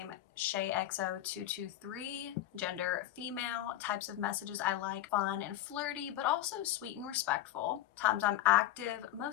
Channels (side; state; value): right; quieter; 13.5 dB